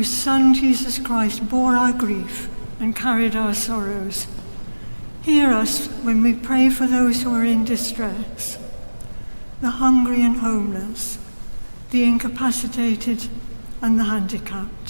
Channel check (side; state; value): both; inverted; correlation -1.00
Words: Son Jesus Christ bore our grief and carried our sorrows, hear us when we pray for those who are in distress, the hungry and homeless, the incapacitated and the